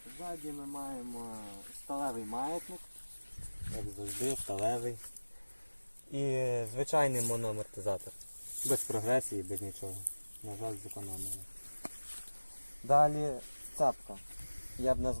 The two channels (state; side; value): inverted; both; correlation -1.00